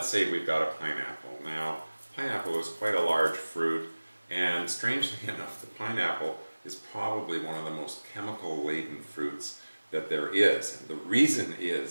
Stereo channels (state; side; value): inverted; both; correlation -1.00